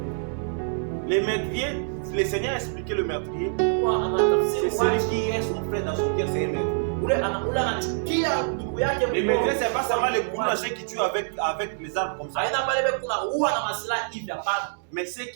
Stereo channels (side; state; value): left; silent; digital silence